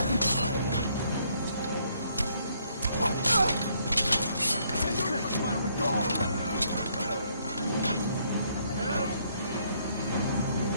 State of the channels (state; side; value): inverted; both; correlation -0.69